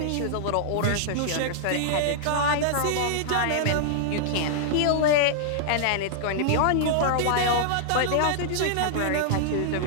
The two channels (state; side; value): different; both; correlation -0.01